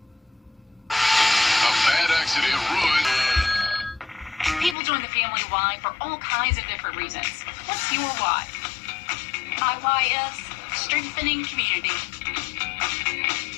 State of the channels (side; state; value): right; drops out; at 4.8 s